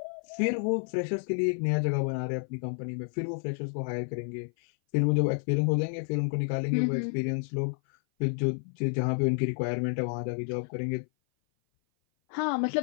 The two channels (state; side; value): silent; right; 56 dB below the other